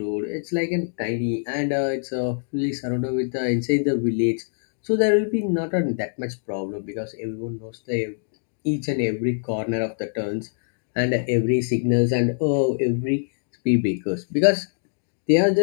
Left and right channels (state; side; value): silent; right; digital silence